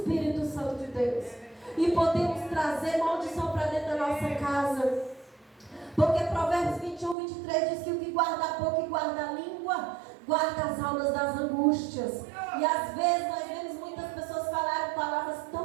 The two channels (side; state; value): left; drops out; at 7.2 s